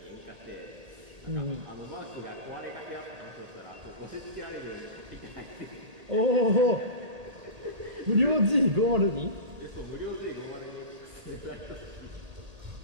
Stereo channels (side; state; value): left; late; 1.8 ms